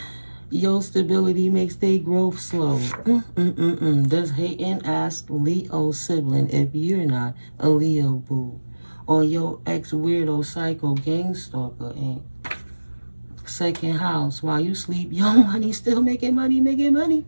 Your stability makes their growth slow. Does hating ask Leo sibling if you're not a Leo boo. Or your ex-weirdo psycho gang stalker ain't. Second house, while you sleep, your money still making money.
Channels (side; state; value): both; inverted; correlation -1.00